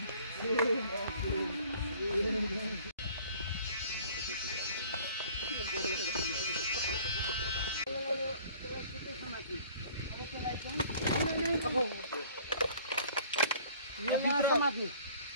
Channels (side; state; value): both; inverted; correlation -0.52